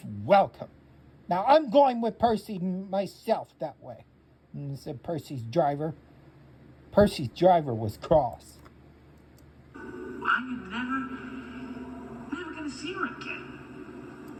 welcome. Now, I'm going with Percy myself that way, said Percy's driver. Percy's driver was cross. I'm never gonna see her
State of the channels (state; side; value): identical; both; correlation 1.00